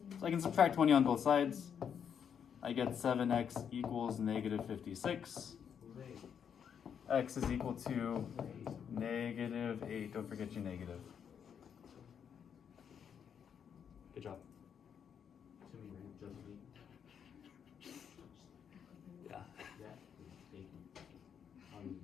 So I can subtract 20 on both sides. I get 7x equals negative 56. Who's 8? X is equal to Who's 8? negative 8. Don't forget your negative. Good job. To me, right? Just me. Yeah. Yeah. Thank you. All you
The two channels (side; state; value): right; quieter; 7.8 dB